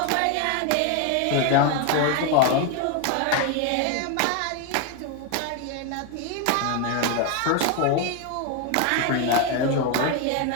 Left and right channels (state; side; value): different; both; correlation 0.01